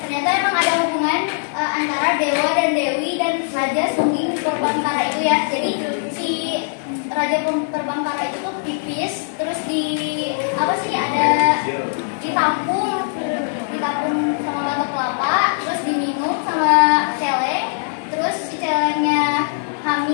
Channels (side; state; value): right; silent; digital silence